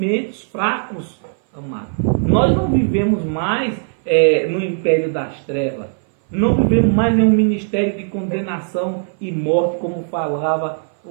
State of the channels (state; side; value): silent; left; 60 dB below the other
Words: fracos, amado. Nós não vivemos mais no império das trevas. Não vivemos mais em um ministério de condenação e morte, como falava